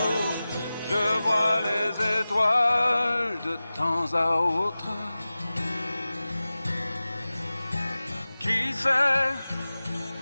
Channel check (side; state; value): both; inverted; correlation -0.96